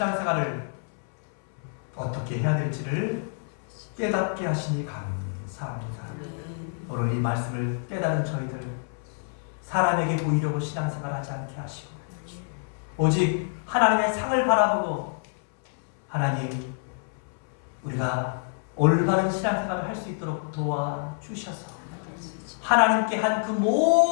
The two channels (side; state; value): right; silent; 60 dB below the other